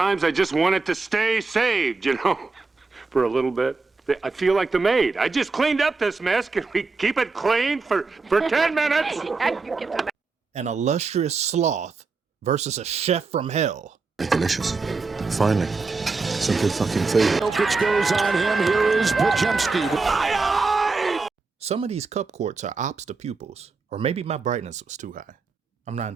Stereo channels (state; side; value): quieter; left; 4.1 dB